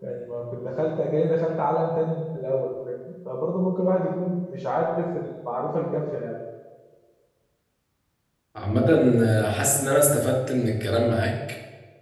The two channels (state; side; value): identical; both; correlation 1.00